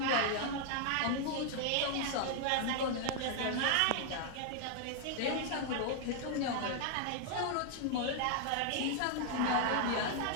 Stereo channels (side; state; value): both; different; correlation 0.00